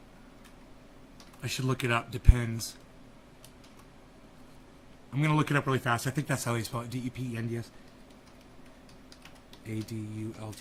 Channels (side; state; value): both; identical; correlation 1.00